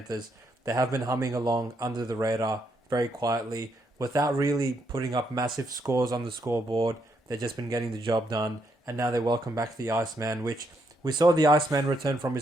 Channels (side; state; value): both; normal; correlation 0.77